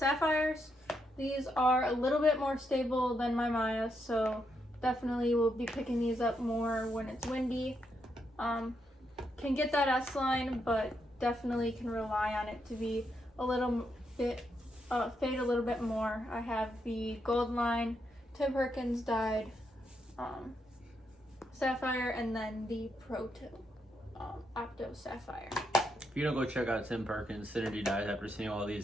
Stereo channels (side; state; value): both; normal; correlation 0.80